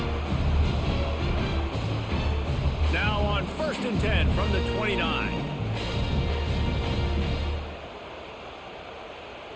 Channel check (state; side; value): identical; both; correlation 1.00